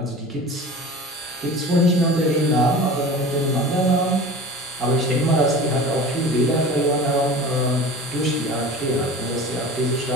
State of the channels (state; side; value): normal; both; correlation 0.37